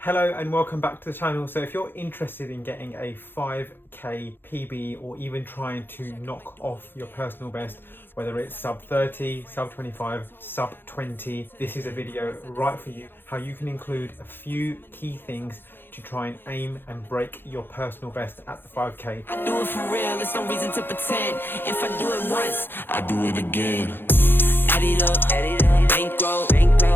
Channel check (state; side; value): late; right; 0.10 ms